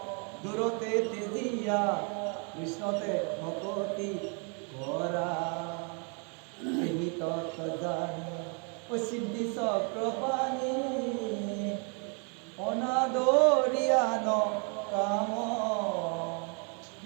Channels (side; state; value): left; quieter; 37.6 dB